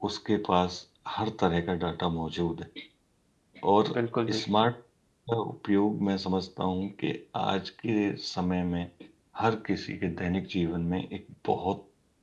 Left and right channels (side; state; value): both; identical; correlation 1.00